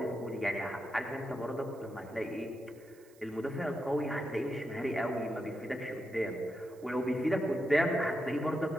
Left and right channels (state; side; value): noise; right; hiss, 28 dB below the sound